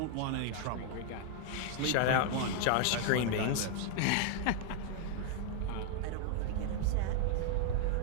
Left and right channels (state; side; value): different; both; correlation 0.00